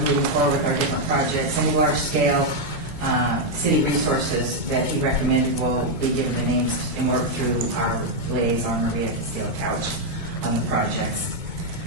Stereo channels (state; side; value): late; left; 2.2 ms